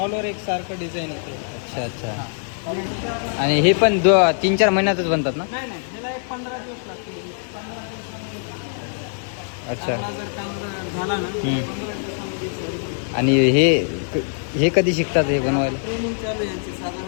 ओव्हर एक सारखं डिझाईन येते. अच्छा अच्छा आणि हे पण 3-4 महिन्यातच बनतात ना. नाही नाही, ह्याला एक 15 दिवस लागतील. 15 अच्छा जर काम झाला ना 15 दिवसामध्ये. आणि हे कधी शिकतात हे बनवायला. ट्रेनिंग चालू आहे यांची,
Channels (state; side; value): silent; right; digital silence